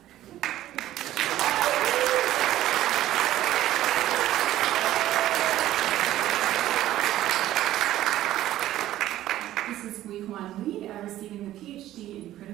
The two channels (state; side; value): quieter; left; 13.8 dB